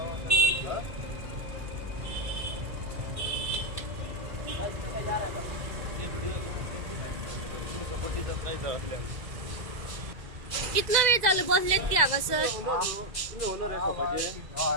सर। कितना वेळ झालं बसलेत की हांगा सर? तुम्ही होणार आहे सपाचे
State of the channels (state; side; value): late; left; 2.0 ms